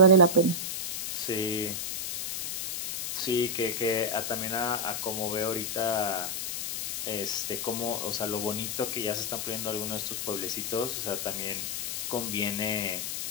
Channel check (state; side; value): noise; left; hiss, 2 dB below the sound